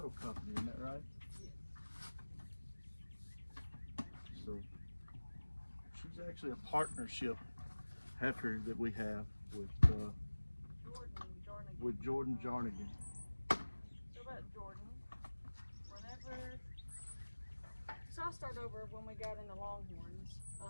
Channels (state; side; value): inverted; both; correlation -1.00